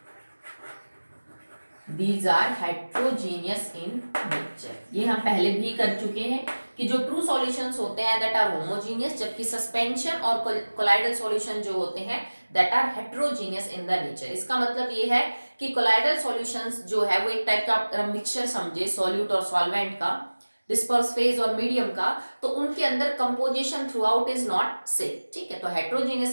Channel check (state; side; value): inverted; both; correlation -1.00